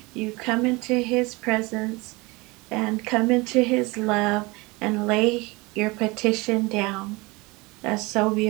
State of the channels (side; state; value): left; quieter; 24.6 dB